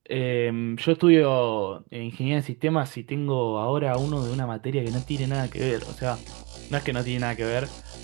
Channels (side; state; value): left; quieter; 27.7 dB